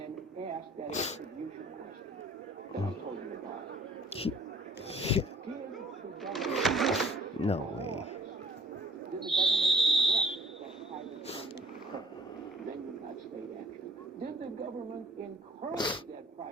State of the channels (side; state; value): both; normal; correlation 0.52